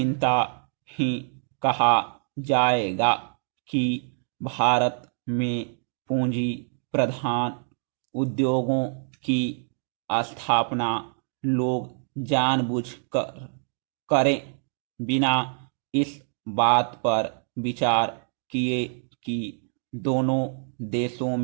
ही कहा जाएगा कि भारत में पूंजी प्रधान उद्योगों की स्थापना लोग जानबूझकर करें, बिना इस बात पर विचार किए कि दोनों देशों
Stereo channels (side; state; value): left; silent; 61 dB below the other